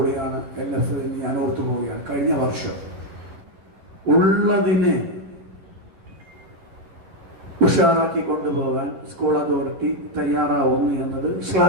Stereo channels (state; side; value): late; left; 10 ms